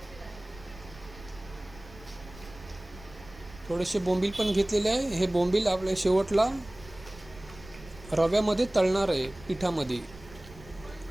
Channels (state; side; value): noise; right; rumble, 19 dB below the sound